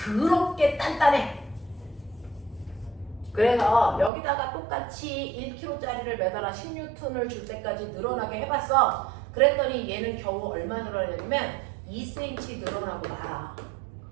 단단해. 그래서 여기다가 똑같이 1kg짜리를 매달아 10N을 줄 때까지 늘어나게 해봤어. 그랬더니 얘는 겨우 얼마 늘어나냐면 2cm 늘어나고 말아.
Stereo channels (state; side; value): drops out; left; at 4.1 s